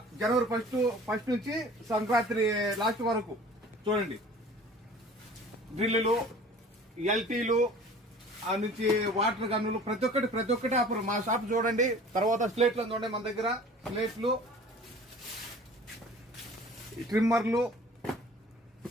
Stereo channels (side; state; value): both; normal; correlation 0.46